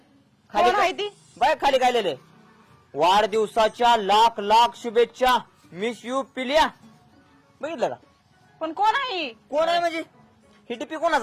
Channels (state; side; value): identical; both; correlation 1.00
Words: कोण आहे ती? बाय खाली काय लिहिलंय वाढदिवसाच्या लाख लाख शुभेच्छा मिस यू पिल्या बघितलं का पण कोण आहे? कोण आहे म्हणजे ही टिपी